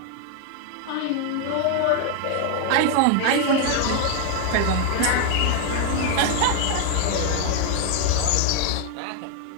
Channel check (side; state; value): both; different; correlation 0.01